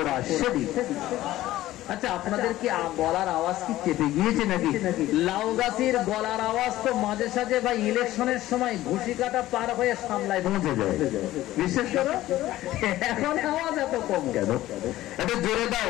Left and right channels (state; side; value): quieter; right; 15.3 dB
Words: শরীফ। আচ্ছা, আপনাদের কি গলার আওয়াজ কি চেপে গিয়েছে নাকি? লাউ গাছের গলার আওয়াজ তো মাঝে সাঝে বা ইলেকশনের সময় ঘুষি কাটা পার হয়ে সামলায় পৌঁছে যায়, বিশেষ করে এখন আওয়াজ এত কম কেন? এটা জোরে